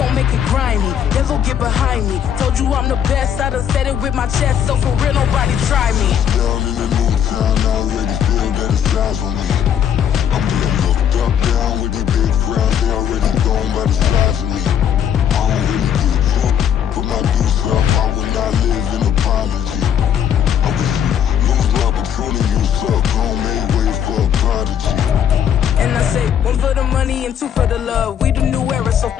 make it grimy, devil get behind me. Told you I'm the best, I done said it with my chest, so for real nobody try me. Down in the new town, I already feel that it's eyes on me. I'm getting looked up, down with these big crowds, they already gone by the size of me. I don't really give a fuck, put my deuce up, I will not live in apology. I wish you lose the opportunity, you suck, gon' make way for a prodigy. And I say, one for the money and two for the love. We the new era, so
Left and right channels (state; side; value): quieter; right; 9.0 dB